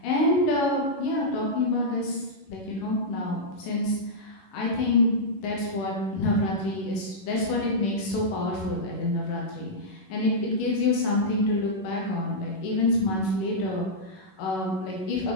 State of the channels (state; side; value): late; right; 11 ms